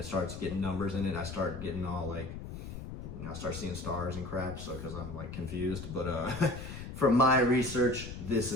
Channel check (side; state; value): left; noise; rumble, 9 dB below the sound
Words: starts getting numbers in it, I start getting all like, you know, I start seeing stars and crap, so because I'm like confused. But from my research, this